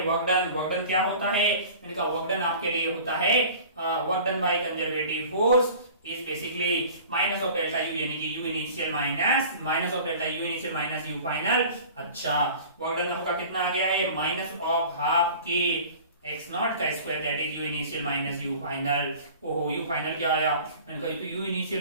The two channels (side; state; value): both; inverted; correlation -0.43